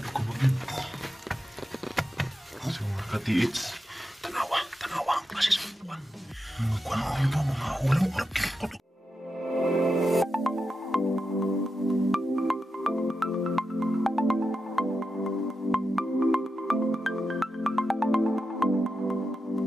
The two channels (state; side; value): normal; both; correlation 0.88